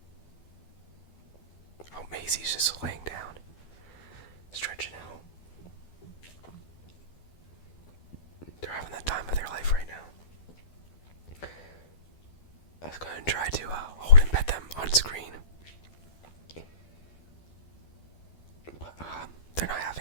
Oh, Maisy's just laying down, stretching out. They're having the time of their life right now. I was going to try to hold and pet them on screen, but they're not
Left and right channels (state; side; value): late; right; 12 ms